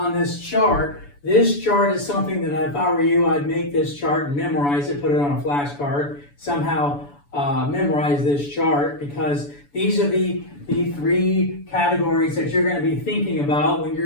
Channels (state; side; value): late; right; 7.0 ms